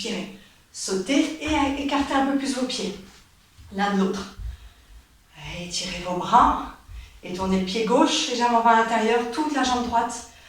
Sautez et écartez un peu plus vos pieds. L'un de l'autre. Étirez vos bras et tournez le pied gauche légèrement vers l'intérieur, toute la jambe droite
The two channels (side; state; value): both; identical; correlation 1.00